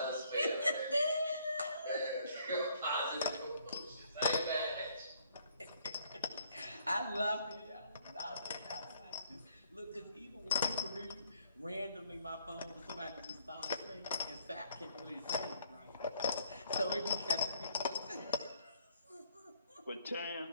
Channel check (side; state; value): both; inverted; correlation -0.65